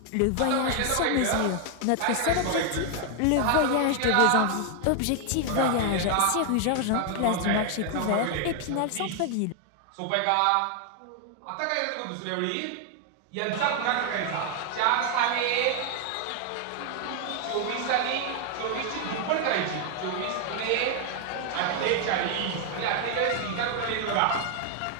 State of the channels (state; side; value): different; both; correlation 0.00